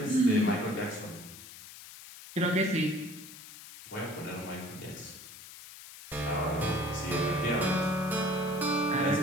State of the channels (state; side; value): noise; left; hiss, 16 dB below the sound